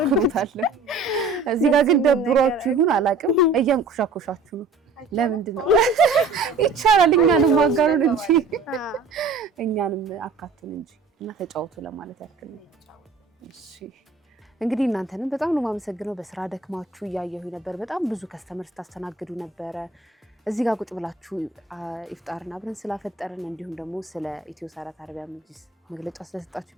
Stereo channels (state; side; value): quieter; left; 4.0 dB